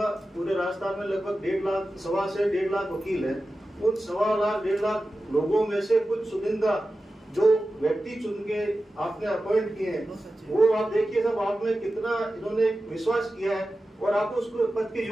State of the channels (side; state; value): both; normal; correlation 0.94